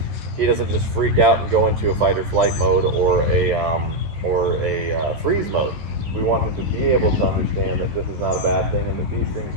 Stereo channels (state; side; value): late; left; 14 ms